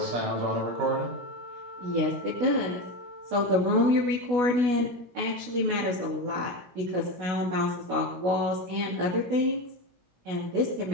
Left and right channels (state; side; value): late; left; 16 ms